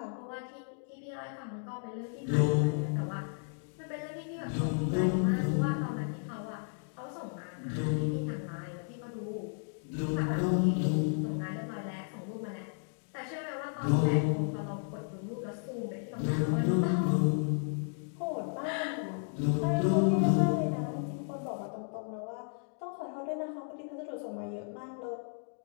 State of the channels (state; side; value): silent; right; 55 dB below the other